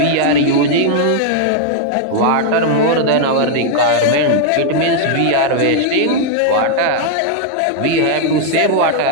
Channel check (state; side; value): different; both; correlation 0.00